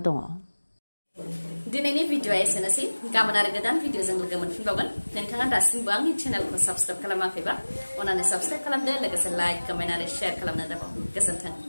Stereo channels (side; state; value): both; inverted; correlation -1.00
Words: दङ। दिनैनि भिडिअआ एसेनोसै। गाबोन आरो गोदान भिडिअजों लोगो मोनफिनबावगोन। नोंथाङा दासिमबो आंनि चेनेलखौ साबस्क्राइब खालामाखैबा अन्नानै साबस्क्राइब खालामदो, लोगोसे लाइक, कमेन्ट आरो शेयार खालामनो दाबाव। गोजोन्थों।